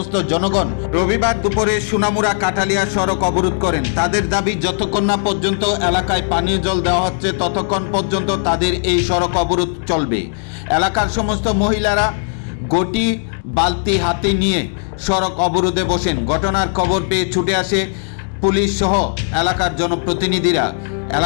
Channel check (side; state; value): right; silent; digital silence